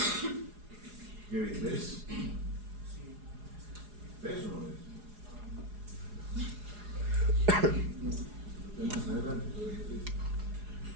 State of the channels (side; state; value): left; late; 4.8 ms